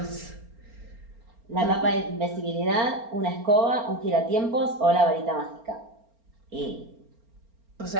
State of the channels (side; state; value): left; late; 4.4 ms